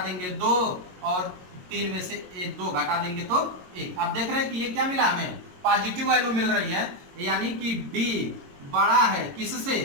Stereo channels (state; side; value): late; left; 22 ms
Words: देंगे 2 और 3 में से 2 घटा देंगे तो 1। आप देख रहे हैं कि ये क्या मिला हमें पॉजिटिव वैल्यू मिल रही है, यानी कि d बड़ा है